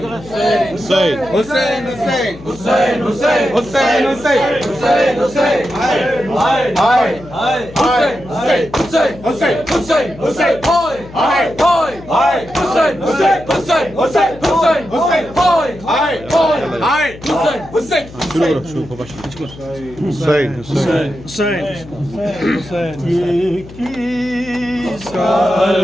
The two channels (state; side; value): noise; left; hum, 17 dB below the sound